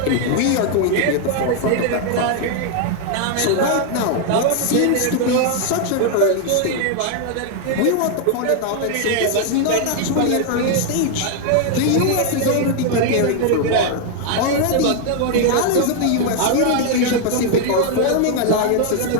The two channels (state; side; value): different; both; correlation 0.00